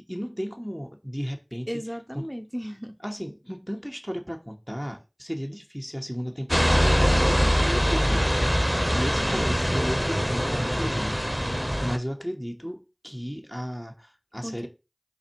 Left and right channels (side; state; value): both; identical; correlation 1.00